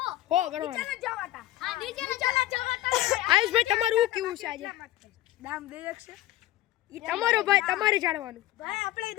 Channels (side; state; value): right; quieter; 15.1 dB